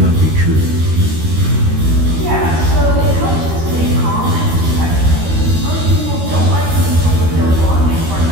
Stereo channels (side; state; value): left; late; 13 ms